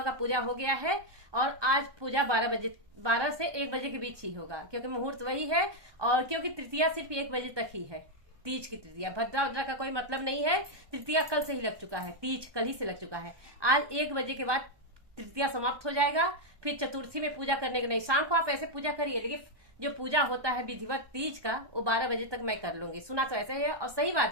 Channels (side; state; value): left; late; 1.2 ms